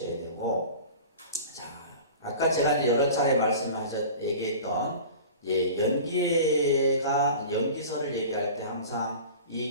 되고, 자, 아까 제가 이제 여러 차례 얘기했던 연기서를 얘기할 때 항상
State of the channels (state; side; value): inverted; both; correlation -0.38